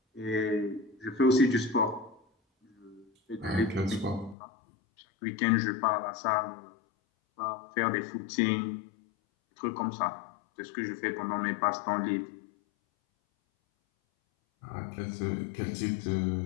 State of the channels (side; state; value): right; drops out; at 4.4 s